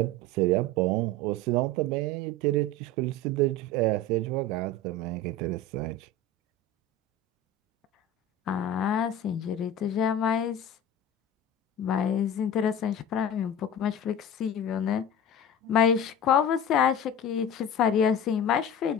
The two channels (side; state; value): both; normal; correlation 0.33